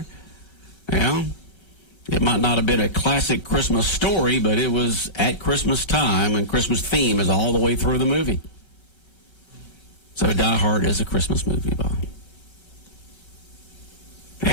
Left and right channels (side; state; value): right; late; 1.3 ms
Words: It might not have been a classic Christmas story, but it was at Christmas time, and Christmas theme is all the way through the movie. So Die Hard is a Christmas movie, Bob.